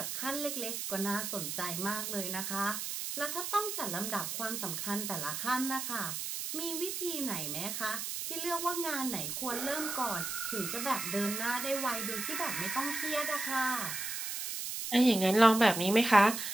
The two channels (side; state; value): right; noise; hiss, 4 dB below the sound